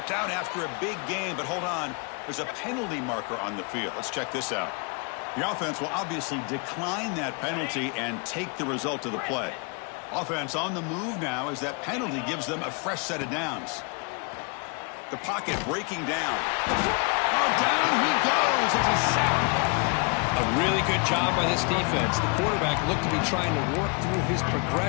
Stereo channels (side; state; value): right; quieter; 34.1 dB